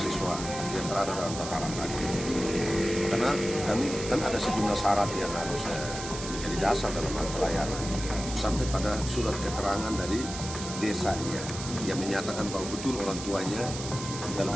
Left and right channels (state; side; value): noise; right; hiss, 9 dB below the sound